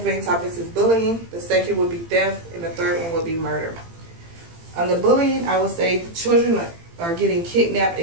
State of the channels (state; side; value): late; left; 18 ms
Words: main topics is bullying, the second would be theft, and the third one would be murder. On the bullying, I would say children are getting kidnapped